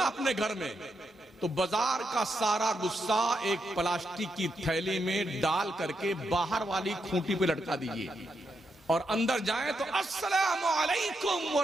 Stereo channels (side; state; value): both; normal; correlation 0.82